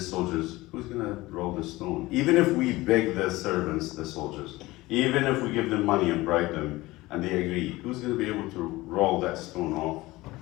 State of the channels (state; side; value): quieter; right; 19.5 dB